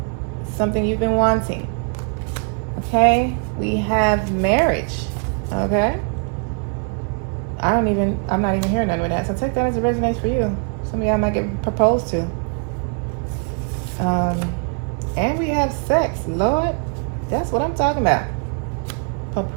Something you've been wanting. Okay? We have marriage. Okay? I'm not even hearing none with that. So take that as it resonates for you. Some of y'all might get proposed to. And we have sex. Lord, that's what I'm talking about.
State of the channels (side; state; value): left; quieter; 39.5 dB